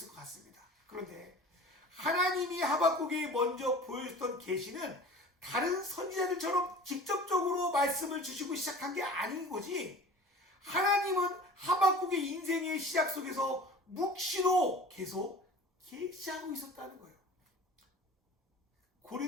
것 같습니다. 그런데 하나님이 하박국에 먼저 보여줬던 계시는 다른 선지자들처럼 직접적으로 말씀을 주시고 시작한 게 아닌 거지, 하나님은 하박국의 인생의 시작 속에서 묵시로 계속 계시하고 있었다는 거예요.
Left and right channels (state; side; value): normal; both; correlation 0.41